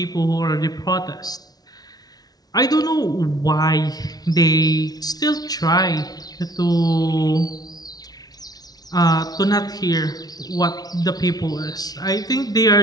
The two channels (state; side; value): late; right; 0.19 ms